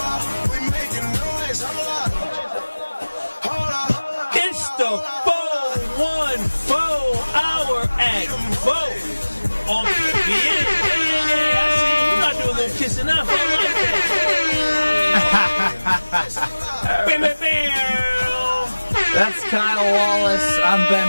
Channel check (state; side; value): inverted; both; correlation -1.00